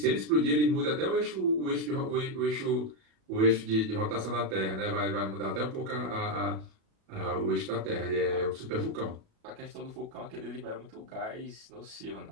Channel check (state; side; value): late; left; 37 ms